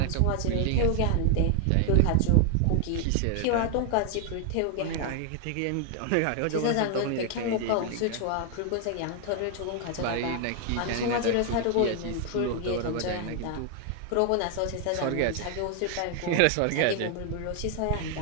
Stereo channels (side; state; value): both; different; correlation 0.00